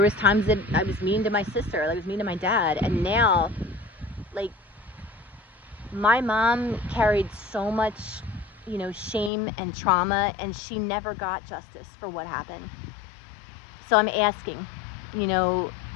was times that I was mean to my sister. I was mean to my dad. And now, like, my mom carried so much, you know, shame and trauma, and she never got justice for what happened. So I'm asking, you know,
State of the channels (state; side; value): drops out; right; at 9.3 s